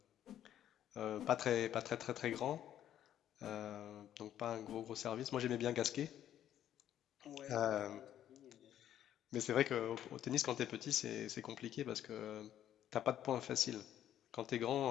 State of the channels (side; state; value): right; quieter; 11.1 dB